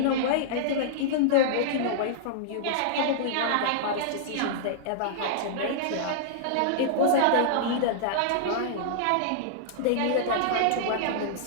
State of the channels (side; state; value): both; different; correlation -0.02